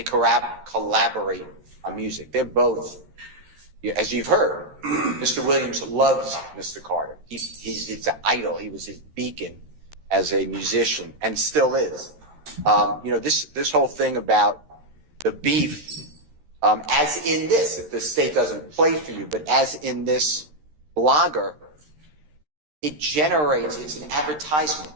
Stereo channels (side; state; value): left; late; 13 ms